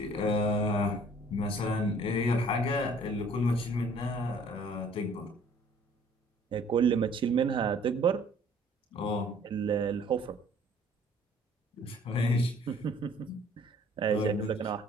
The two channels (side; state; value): both; normal; correlation 0.56